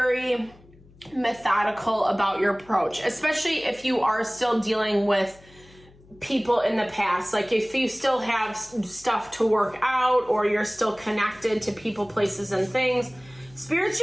methodical about your approach, especially if you are still dealing with people in the past. Like if you still have stuff to work out, or you're still connected to people, places, and things, Spirit's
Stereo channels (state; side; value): noise; left; hum, 26 dB below the sound